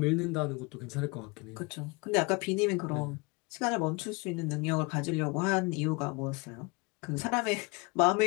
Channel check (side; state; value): right; quieter; 27.6 dB